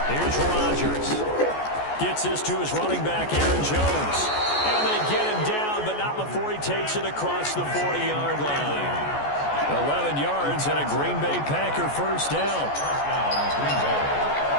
Here's Rodgers. Gets this to his running back, Aaron Jones. And they get him down, but not before he takes it across the 40-yard line. 11 yards and a Green Bay Packer 1st down.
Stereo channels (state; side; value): late; right; 14 ms